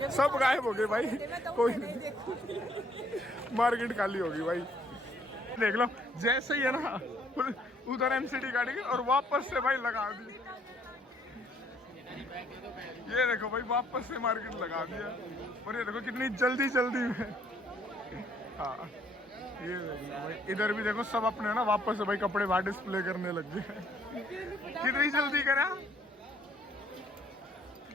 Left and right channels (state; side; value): normal; both; correlation 0.65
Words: सब गायब हो गए भाई। कोई मार्केट खाली होगी भाई। देख लो जैसे ही है ना उधर एमसीडी गाड़ी की और वापस से भाई लगा दी। ये देखो भाई वापस से मार्केट लगा दिया और ये देखो कितनी जल्दी जल्दी में। हाँ ये देखो भाई इधर भी देखो सब अपने ना वापस से भाई कपड़े बाहर डिस्प्ले करने लग गए। कितनी जल्दी करा।